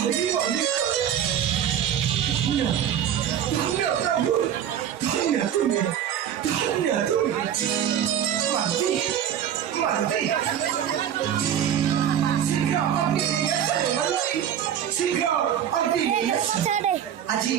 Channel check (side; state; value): left; quieter; 9.7 dB